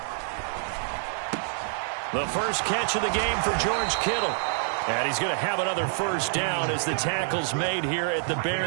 The first catch of the game for George Kittle. And he's going to have another 1st down as the tackle's made here at the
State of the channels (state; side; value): silent; left; digital silence